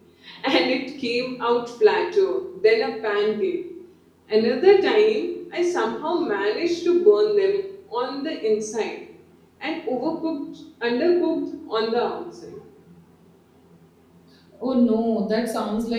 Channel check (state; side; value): identical; both; correlation 1.00